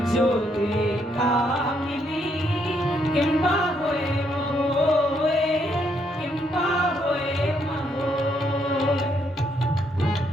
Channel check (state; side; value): normal; both; correlation 0.74